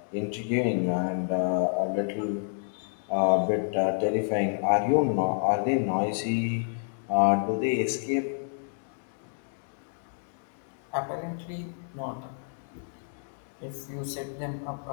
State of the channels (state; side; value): silent; right; digital silence